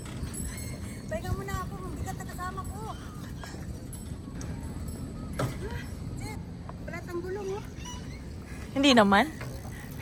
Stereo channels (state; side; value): identical; both; correlation 1.00